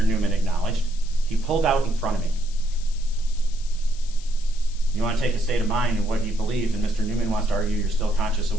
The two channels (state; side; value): noise; left; hiss, 19 dB below the sound